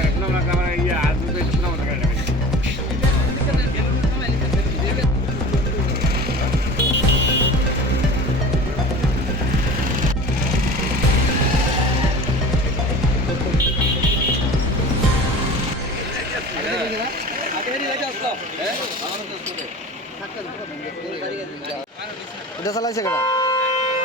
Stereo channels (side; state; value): both; normal; correlation 0.37